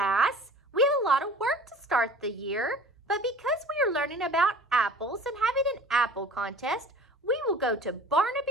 we have a lot of work to start the year. But because we are learning about apples and having an apple contest, we will go to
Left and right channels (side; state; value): both; normal; correlation 0.45